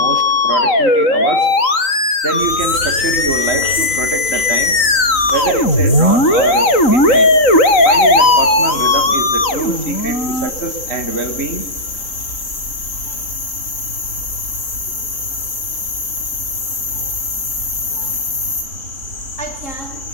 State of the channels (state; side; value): late; right; 3.8 ms